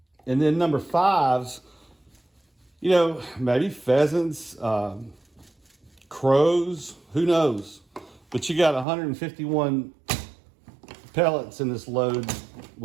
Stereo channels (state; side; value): drops out; left; at 8.8 s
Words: then number 5s, maybe pheasants, crows, who knows? But you got 151 pellets in this load